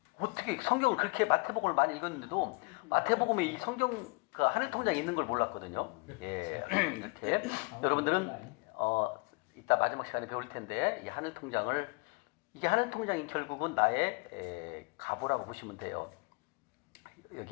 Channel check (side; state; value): right; quieter; 29.6 dB